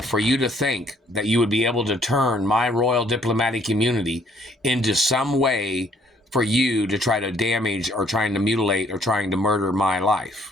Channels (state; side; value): normal; both; correlation 0.64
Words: you to think that you would be able to turn my royal diplomatic immunity into some way for you to try to damage or trying to mutilate or trying to murder my